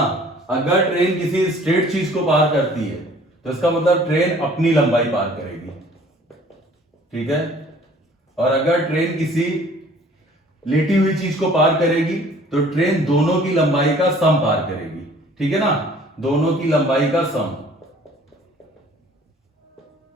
अगर ट्रेन किसी स्ट्रेट चीज को पार करती है, तो इसका मतलब ट्रेन अपनी लंबाई पार करेगी। ठीक है? और अगर ट्रेन किसी लेटी हुई चीज को पार करेगी, तो ट्रेन दोनों की लंबाई का सम पार करेगी। ठीक है ना? दोनों की लंबाई का सम,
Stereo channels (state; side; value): normal; both; correlation 0.53